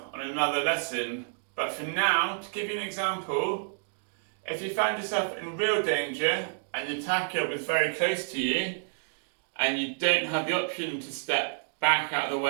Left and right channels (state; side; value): silent; left; digital silence